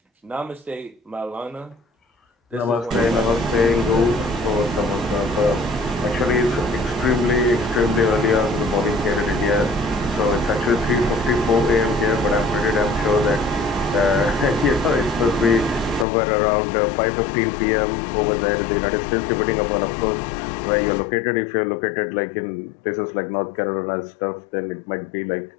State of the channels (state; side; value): drops out; right; at 16.1 s